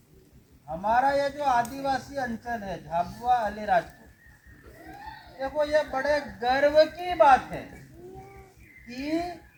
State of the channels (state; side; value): identical; both; correlation 1.00